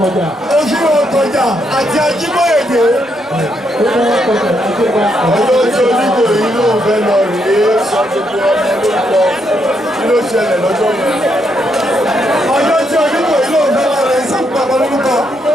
òfin ọ̀tọ̀jà àti ajíbóyèdè. ọjọ́ tí onígbò yìí ló ń fẹ́ lọ rèé sọ gbogbo ọmọ lórúkọ kí ló ṣẹlẹ̀ lọ́jọ́ yẹn. ọjọ́ tí onígbò yìí ló ń fẹ́ lọ rèé sọ gbogbo ọmọ lórúkọ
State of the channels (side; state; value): both; normal; correlation 0.77